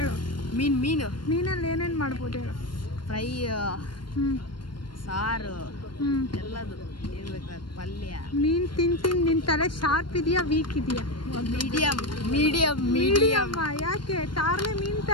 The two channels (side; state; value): right; late; 0.72 ms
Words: मीनू ಮೀನಲ್ಲಿ ಏನೇನು ಮಾಡ್ಬೋದು ಹೇಳು? ಫ್ರೈ ಹ್ಞೂ ಸಾರು ಹ್ಞೂ ಎಲ್ಲದು ಏನ್ ಬೇಕಾದ ಪಲ್ಯ ಮೀನು ತಿಂದು ನಿನ್ನ ತಲೆ ಶಾರ್ಪ್ ಇದೆಯಾ ವೀಕ್ ಇದೆಯಾ? Medium medium medium. ಯಾಕೆ ತಾರ್ಲೆ ಮೀನು